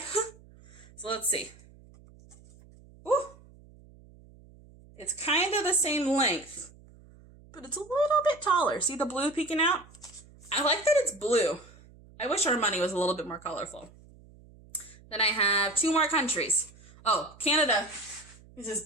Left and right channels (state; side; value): noise; right; hum, 24 dB below the sound